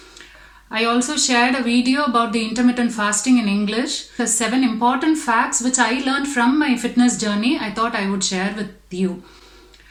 I also shared a video about the intermittent fasting in English. The 7 important facts which I learned from my fitness journey I thought I would share with you.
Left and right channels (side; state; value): both; identical; correlation 1.00